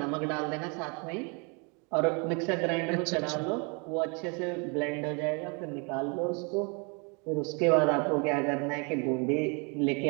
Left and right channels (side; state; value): left; quieter; 33.4 dB